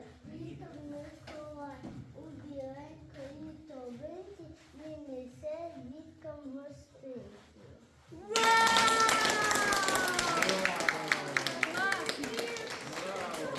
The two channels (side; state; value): both; identical; correlation 1.00